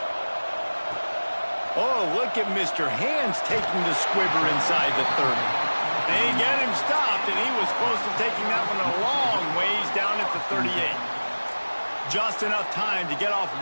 Oh, look at Mr. Hands taking the squibber inside the 30. They get him stopped, and he was close to taking that one a long ways down at the 38. Just enough time to get off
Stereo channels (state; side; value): inverted; both; correlation -1.00